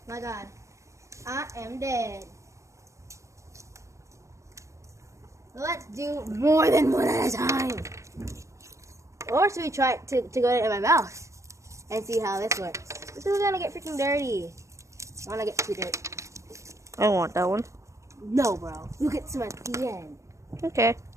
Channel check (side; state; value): left; late; 0.15 ms